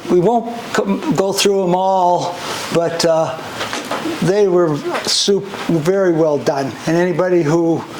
We won't go through them all, but they were very well done. And anybody who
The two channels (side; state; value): both; identical; correlation 1.00